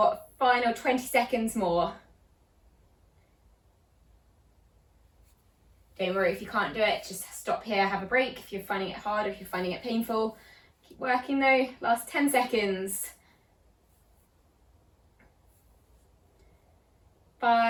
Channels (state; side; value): identical; both; correlation 1.00